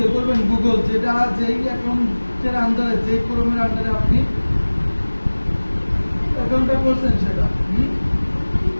করবেন। গুগল যেটা যেই অ্যাকাউন্টের আন্ডারে, যে ক্রোমের আন্ডারে আপনি অ্যাকাউন্টটা করছেন সেটা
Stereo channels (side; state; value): both; inverted; correlation -1.00